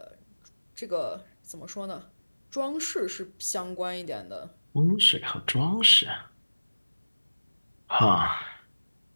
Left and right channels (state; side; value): inverted; both; correlation -1.00